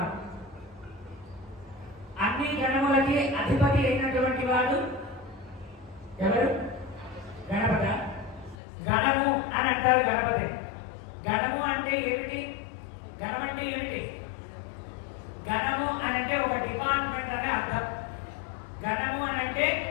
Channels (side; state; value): right; drops out; at 8.6 s